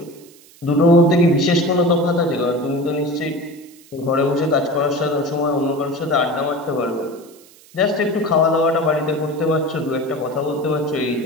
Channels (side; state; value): right; noise; hiss, 25 dB below the sound